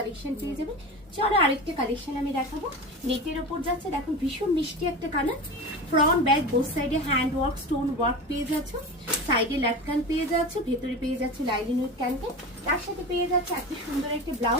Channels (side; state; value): both; normal; correlation 0.28